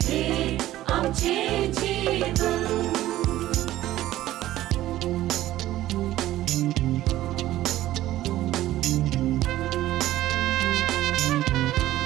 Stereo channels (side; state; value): left; quieter; 14.7 dB